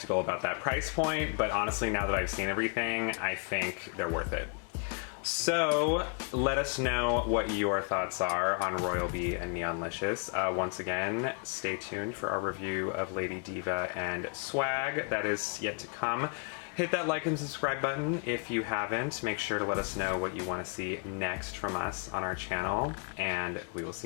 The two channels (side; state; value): right; quieter; 39.1 dB